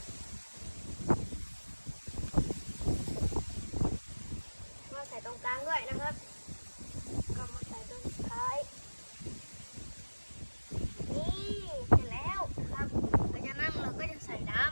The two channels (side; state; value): both; inverted; correlation -1.00